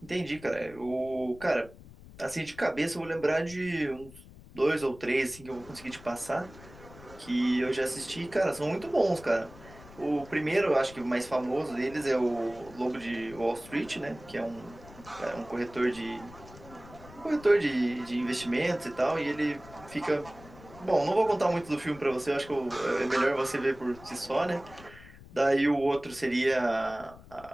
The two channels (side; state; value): left; noise; rumble, 19 dB below the sound